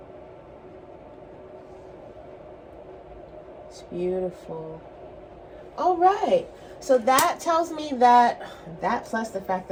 It's beautiful. All right. So that tells me that plus the fact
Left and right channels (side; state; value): both; identical; correlation 1.00